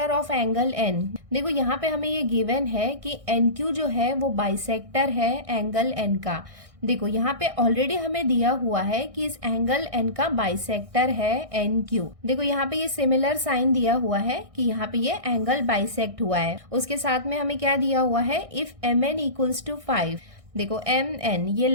of angle N. देखो यहाँ पे हमें ये गिवन है कि एन क्यू जो है वो बाइसेक्टर है एंगल एन का। देखो यहाँ पे ऑलरेडी हमें दिया हुआ है कि इस एंगल एन का बाइसेक्टर है एन क्यू। देखो यहाँ पे ये सिमिलर साइन दिया हुआ है कि यहाँ पे ये एंगल बाइसेक्ट हुआ है। उसके साथ में हमें क्या दिया हुआ है, if M N equals to 5। देखो एम एन ये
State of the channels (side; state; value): left; late; 1.6 ms